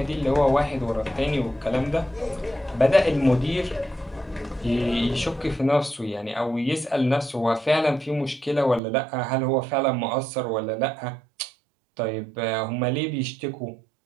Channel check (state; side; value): drops out; left; at 8.8 s